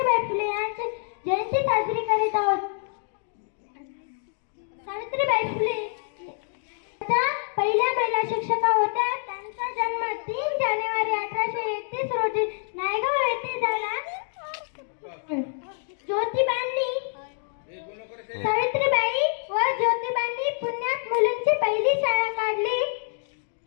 फुले यांची जयंती साजरी करीत आहोत। सावित्रीबाई फुले पहिल्या महिला शिक्षिका होत्या। त्यांचा जन्म 3 जानेवारी 1831 रोजी नायगाव येथे झाला। सावित्रीबाई व ज्योतिबांनी पुण्यात मुलींची पहिली शाळा काढली।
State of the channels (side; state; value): right; silent; 61 dB below the other